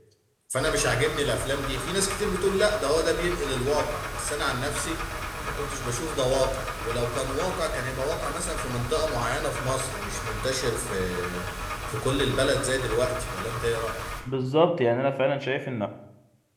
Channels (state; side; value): identical; both; correlation 1.00